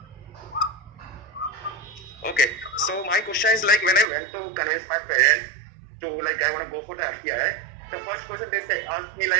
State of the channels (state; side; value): drops out; left; at 4.0 s